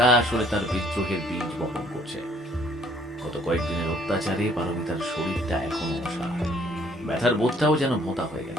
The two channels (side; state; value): both; normal; correlation 0.61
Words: আসলে তার বিদ্রোহের বীজ বপন করছে। গত কয়েকদিনের অত্যাচারে পারমিতার শরীরটা এখনো অসহায়। ব্যথার বোধটাও যেন ভোঁতা হয়ে